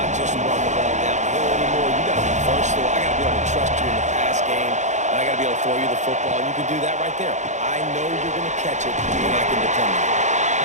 just run the ball downhill anymore. You got to be versatile. I got to be able to trust you in the pass game, and I got to be able to throw you the football, and you can do that right there. I know you're going to catch it, and I can depend on it.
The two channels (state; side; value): late; left; 0.34 ms